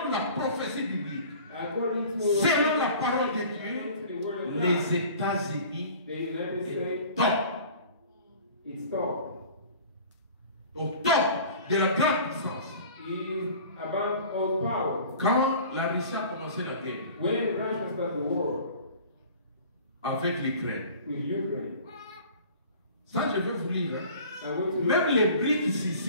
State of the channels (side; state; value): both; inverted; correlation -0.45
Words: la prophétie biblique, According to selon la parole de Dieu, according to the word of God, les États-Unis the United est States top, is top. au top de la grande puissance. Is above all power. Quand la Russie a commencé la guerre When Russia started the war avec l'Ukraine, with Ukraine, ça je vais vous lire. Hein. I went to Même les BRICS